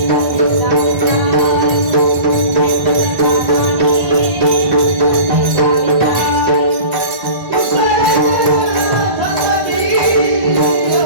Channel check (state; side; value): late; left; 1.5 ms